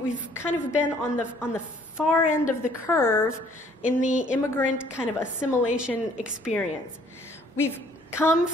of been on the far end of the curve in the immigrant kind of assimilation experience. We've come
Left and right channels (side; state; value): both; normal; correlation 0.59